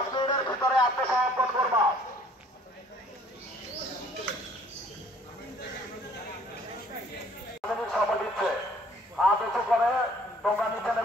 মিনিটের ভিতরে আত্মসমর্পণ করবা। সময় দিচ্ছে, হাত উঁচু করে তোমরা নিচে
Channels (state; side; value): normal; both; correlation 0.58